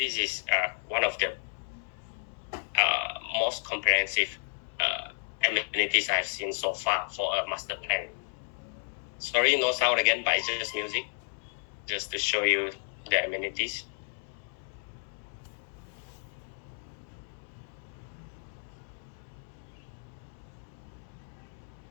is one of the most comprehensive amenities I've seen so far for a master plan. Sorry, no sound again, but it's just music, just to show you the amenities.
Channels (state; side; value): silent; right; 56 dB below the other